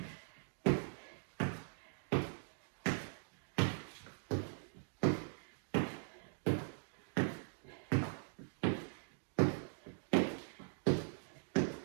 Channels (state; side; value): silent; left; digital silence